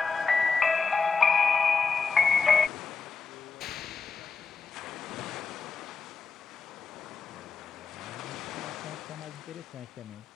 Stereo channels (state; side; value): quieter; right; 5.2 dB